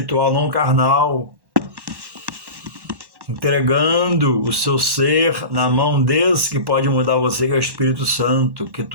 não carnal. Entregando o seu ser na mão desse que pode mudar você, que é o Espírito Santo, que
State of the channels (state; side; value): late; left; 1.1 ms